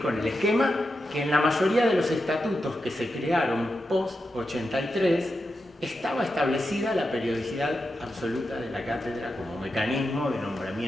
con el esquema que en la mayoría de los estatutos que se crearon post-83 estaba establecida la periodicidad absoluta de la cátedra como mecanismo de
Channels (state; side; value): normal; both; correlation 0.88